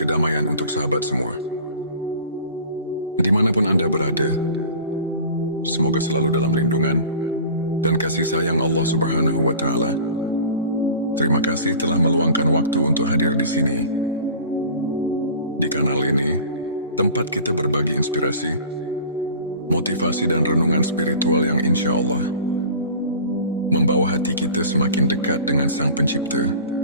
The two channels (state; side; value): inverted; both; correlation -0.41